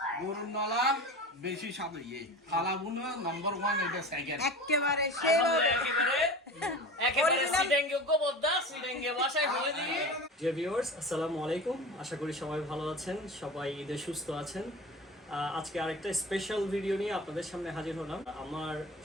গরুর নলা বেশি স্বাদ ইয়ে কালাভুনা নাম্বার 1 এটা সেকেন্ড একেবারে সেরা। একেবারে সিডেঙ্গে গোবদ্দা সিডেঙ্গে বাসায় বলে দিই। ডিয়ার ভিউয়ার্স, আসসালামু আলাইকুম। আশা করি সবাই ভালো আছেন, সবাই ঈদে সুস্থ আছেন। আজকে আরেকটা স্পেশাল ভিডিও নিয়ে আপনাদের সামনে হাজির হলাম। আমার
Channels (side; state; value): both; normal; correlation 0.33